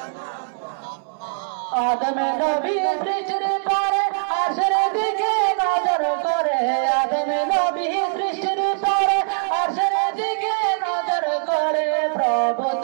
আদম নবী সৃষ্টির পরে আরশের দিকে নজর করে আদম নবী সৃষ্টির পরে আরশের দিকে নজর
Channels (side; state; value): left; silent; 63 dB below the other